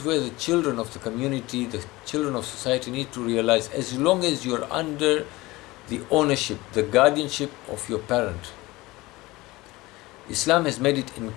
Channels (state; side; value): quieter; right; 20.4 dB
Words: where the children of the community, the children of society need to realize, as long as you're under the ownership, the guardianship of your parent, Islam has made it